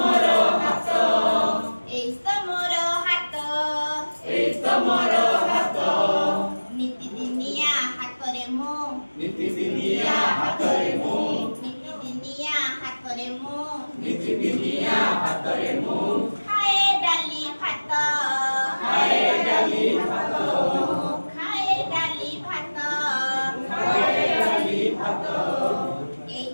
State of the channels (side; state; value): both; inverted; correlation -1.00